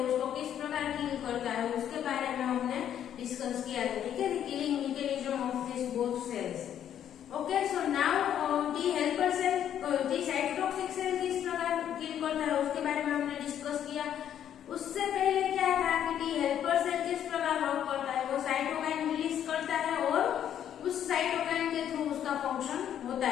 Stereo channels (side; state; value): right; quieter; 10.0 dB